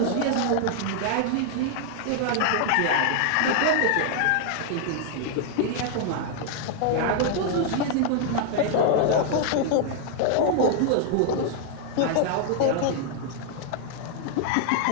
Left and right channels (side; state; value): both; different; correlation 0.00